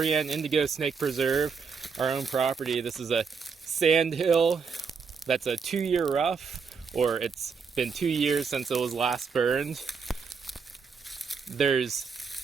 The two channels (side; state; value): left; quieter; 5.6 dB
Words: Indigo Snake Preserve, our own property. This is a sand hill that's a 2-year rough, or it's been 2 years since it was last burned. There's